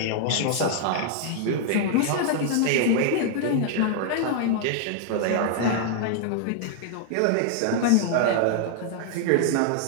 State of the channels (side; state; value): both; different; correlation -0.01